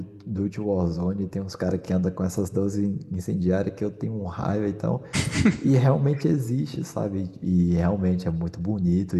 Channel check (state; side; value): identical; both; correlation 1.00